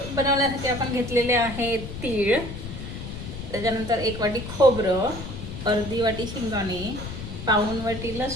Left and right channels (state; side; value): noise; left; rumble, 9 dB below the sound